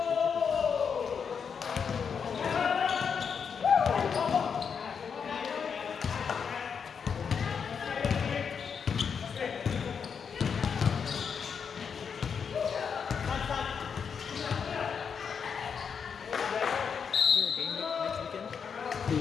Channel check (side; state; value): right; quieter; 6.6 dB